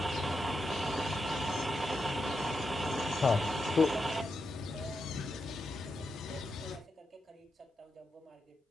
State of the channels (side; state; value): both; normal; correlation 0.87